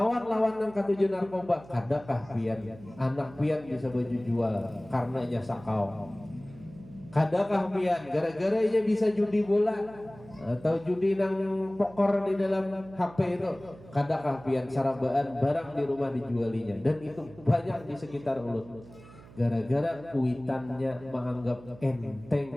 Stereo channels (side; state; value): right; noise; hum, 20 dB below the sound